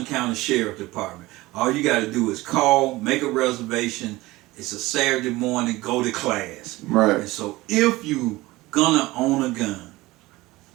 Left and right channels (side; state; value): left; quieter; 19.6 dB